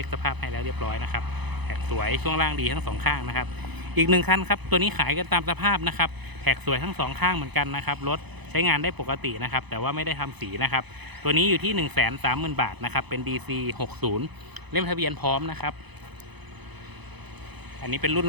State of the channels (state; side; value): late; left; 0.99 ms